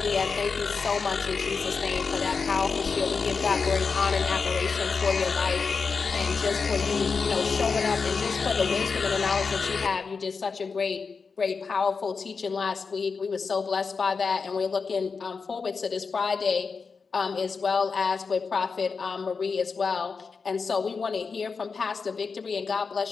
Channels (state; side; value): quieter; right; 5.0 dB